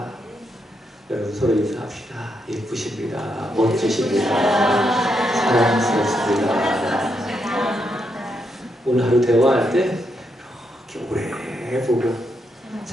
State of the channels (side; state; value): both; normal; correlation 0.80